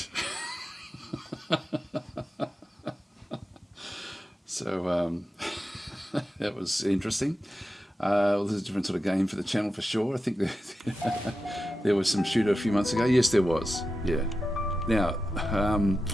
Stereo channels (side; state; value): both; normal; correlation 0.91